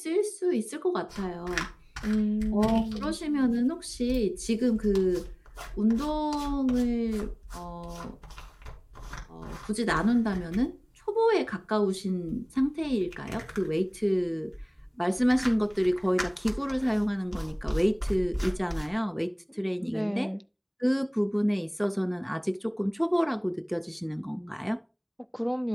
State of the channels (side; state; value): both; identical; correlation 1.00